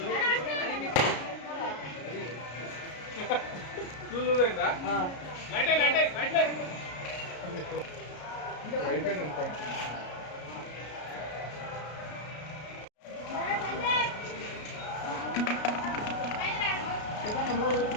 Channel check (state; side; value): late; right; 33 ms